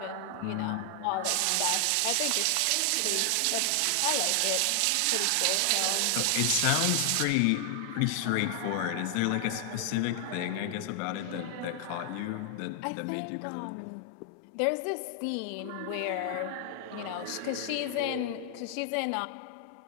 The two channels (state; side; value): different; both; correlation 0.00